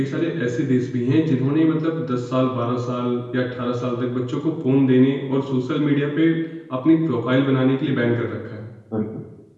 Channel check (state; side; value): identical; both; correlation 1.00